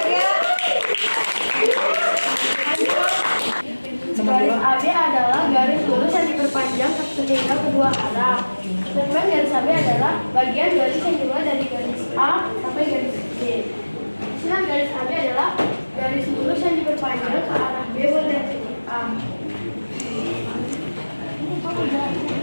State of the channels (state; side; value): inverted; both; correlation -1.00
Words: Garis AB adalah garis lurus yang diperpanjang sehingga kedua arah. Sedangkan garis AB adalah bagian garis yang dimulai dari garis A sampai garis B. Sedangkan garis AB adalah garis lurus yang diperpanjang ke arah B mulai dari titik A.